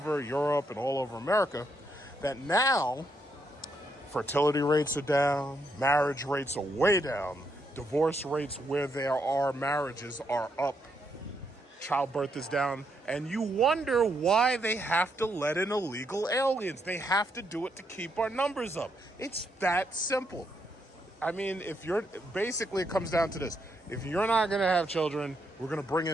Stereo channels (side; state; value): both; normal; correlation 0.77